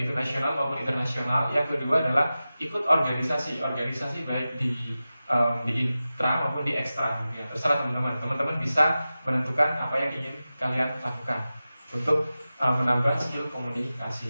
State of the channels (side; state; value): both; inverted; correlation -0.95